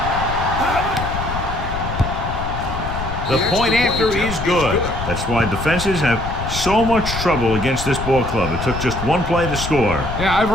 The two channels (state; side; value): noise; left; rumble, 6 dB below the sound